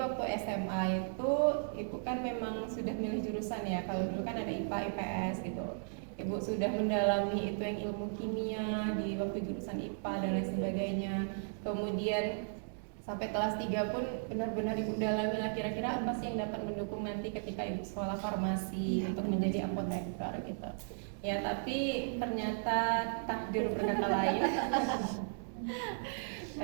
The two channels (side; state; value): left; silent; digital silence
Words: SMA itu ibu kan memang sudah milih jurusan ya. Kalau dulu kan ada IPA, IPS gitu. Ibu sudah mendalami itu yang ilmu kimia di waktu jurusan IPA dan lain sebagainya. Kemudian sampai kelas 3 pun benar-benar ibu dalami lah kira-kira apa sih yang dapat mendukung nanti ketika ibu sekolah farmasi untuk menjadi apoteker gitu. Ya, tapi ternyata takdir berkata lain.